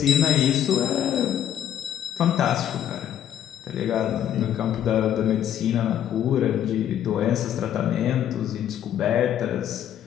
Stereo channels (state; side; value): quieter; right; 10.4 dB